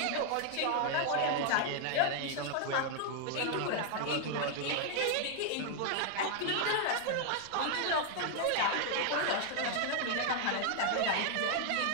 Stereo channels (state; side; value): different; both; correlation 0.00